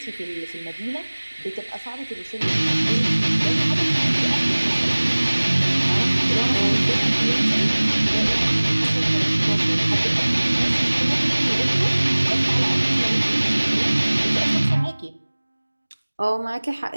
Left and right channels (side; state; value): both; inverted; correlation -1.00